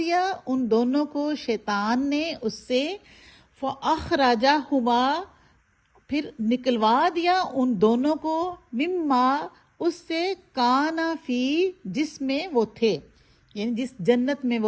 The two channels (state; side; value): identical; both; correlation 1.00